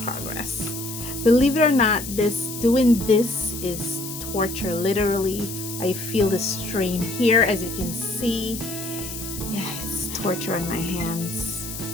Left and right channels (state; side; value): noise; left; hiss, 9 dB below the sound